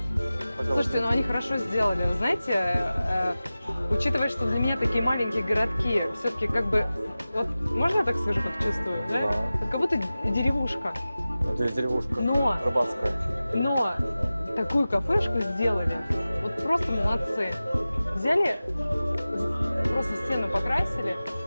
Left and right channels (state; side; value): inverted; both; correlation -0.96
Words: Слушайте, ну они хорошо сделали. Вы знаете, учитывая, что для меня такие маленькие городки, все-таки как бы, вот можно я так скажу, как чувствую, да? Да. Вот как будто деревушка. Здесь деревушка Но, рыбацкая. но такую кафешку сделали, вот просто молодцы. Взяли, просто стену покрасили,